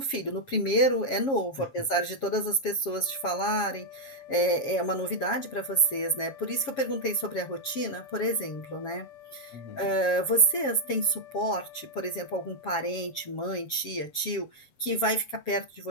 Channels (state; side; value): late; right; 7.4 ms